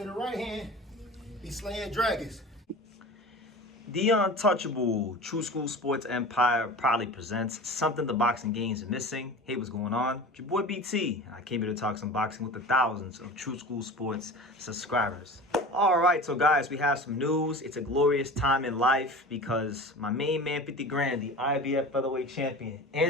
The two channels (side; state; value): both; normal; correlation 0.35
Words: the right hand, be slaying dragons. The Untouchable True School Sports Empire proudly presents something the boxing games are missing. Hey, what's going on? It's your boy BT. I came here to talk some boxing with the thousands of True School Sports subscribers. All right, so guys, we have some news. It's a glorious time in life because my main man, 50 grand, the IBF featherweight champion,